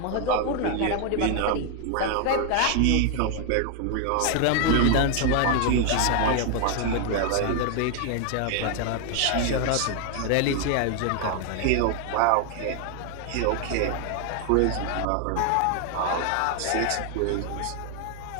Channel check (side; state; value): both; different; correlation 0.00